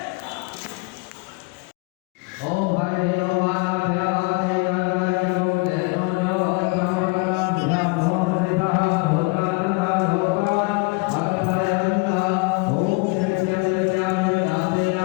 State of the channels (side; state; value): right; quieter; 27.9 dB